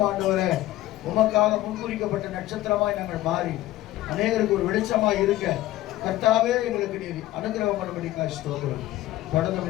ஆண்டவரே உமக்காக முன்குறிக்கப்பட்ட நட்சத்திரமாய் நாங்கள் மாறி அநேகருக்கு ஒரு வெளிச்சமாய் இருக்க கர்த்தாவே எங்களுக்கு நீர் அனுகிரகம் பண்ணும்படிக்காக ஸ்தோத்திரம்.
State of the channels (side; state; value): right; quieter; 15.5 dB